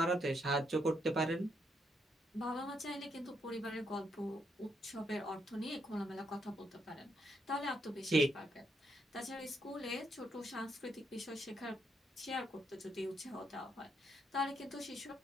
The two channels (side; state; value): both; normal; correlation 0.77